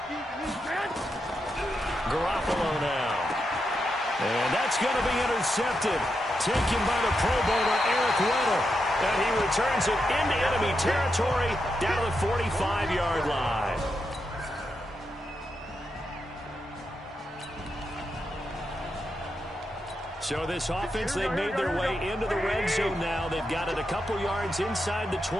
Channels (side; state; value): both; normal; correlation 0.85